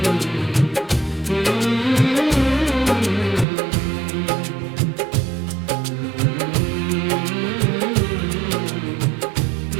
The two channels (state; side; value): drops out; left; at 3.5 s